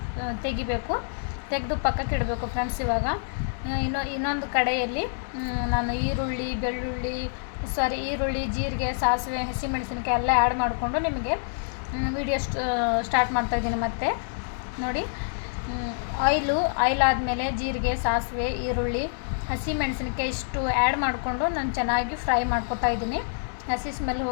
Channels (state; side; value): silent; right; digital silence